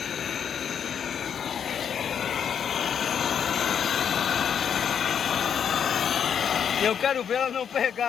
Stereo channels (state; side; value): quieter; right; 8.0 dB